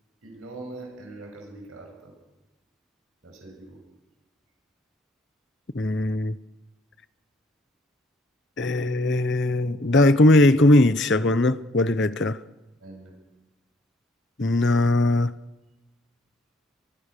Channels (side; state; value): both; normal; correlation 0.65